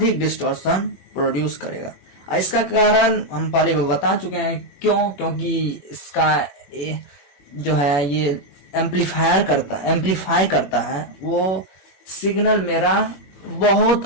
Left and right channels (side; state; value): right; late; 21 ms